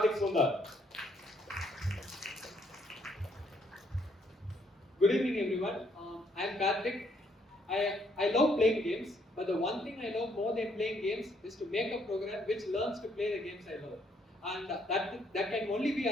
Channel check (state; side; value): normal; both; correlation 0.70